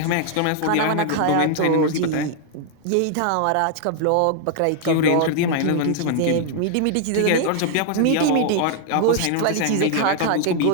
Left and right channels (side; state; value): both; different; correlation 0.00